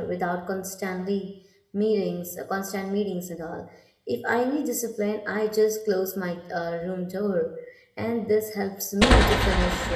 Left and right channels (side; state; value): both; identical; correlation 1.00